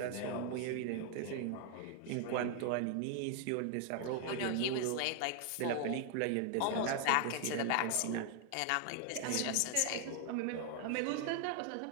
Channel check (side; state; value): both; different; correlation 0.00